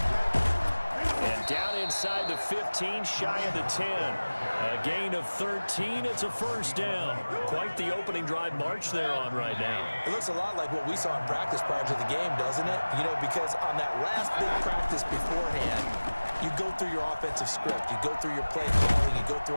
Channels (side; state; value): both; inverted; correlation -1.00